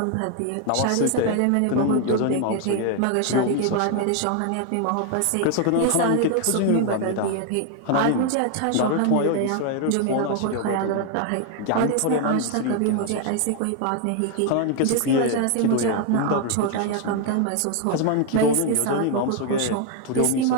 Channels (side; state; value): both; different; correlation 0.01